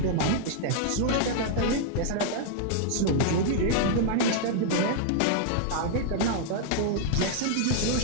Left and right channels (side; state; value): both; different; correlation -0.01